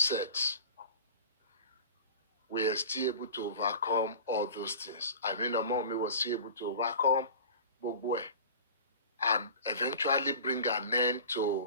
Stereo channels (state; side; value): inverted; both; correlation -0.39